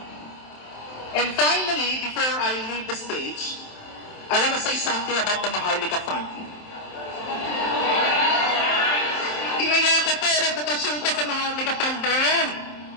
And finally, before I leave the stage, I want to say something about the Maharlika Fund. Inaya ko po, reputasyon ko sa Maharlika Fund na yan.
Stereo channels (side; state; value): right; late; 27 ms